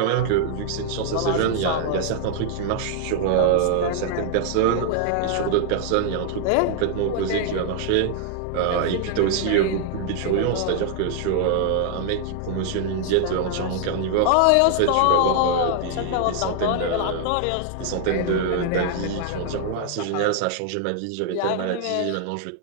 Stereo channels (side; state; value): both; different; correlation 0.00